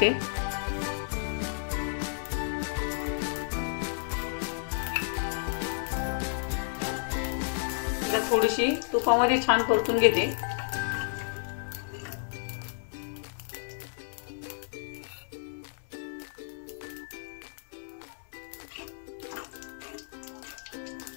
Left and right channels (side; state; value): right; silent; 57 dB below the other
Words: थोडीशी तुपामध्ये छान परतून घेते।